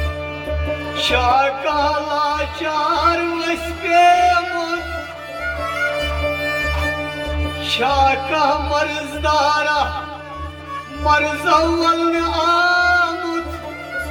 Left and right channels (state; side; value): identical; both; correlation 1.00